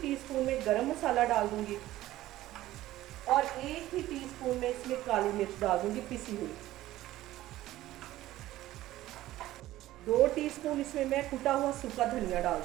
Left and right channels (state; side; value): quieter; left; 15.4 dB